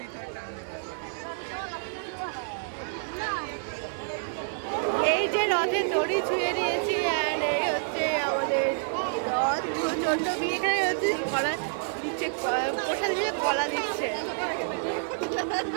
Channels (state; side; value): silent; left; 59 dB below the other